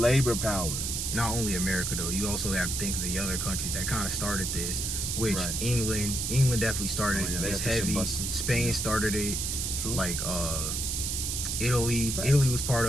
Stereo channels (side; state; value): right; noise; hiss, 1 dB below the sound